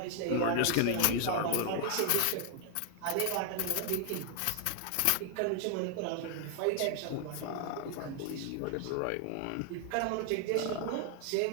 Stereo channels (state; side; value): different; both; correlation 0.00